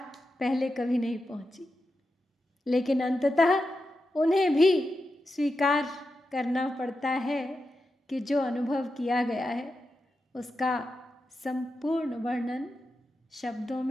पहले कभी नहीं पहुंची। लेकिन अंततः उन्हें भी स्वीकार करना पड़ता है कि जो अनुभव किया गया है उसका संपूर्ण वर्णन शब्दों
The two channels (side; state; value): both; normal; correlation 0.89